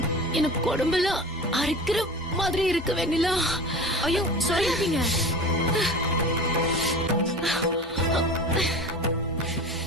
எனக்கு உடம்பெல்லாம் அரைக்கிற மாதிரி இருக்கு வெண்ணிலா. ஐயோ சொல்லாதீங்க.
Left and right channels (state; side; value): normal; both; correlation 0.34